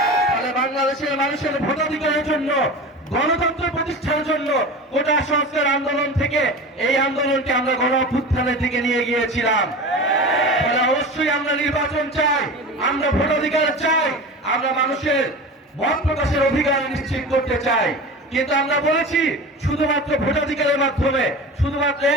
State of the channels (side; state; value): both; normal; correlation 0.32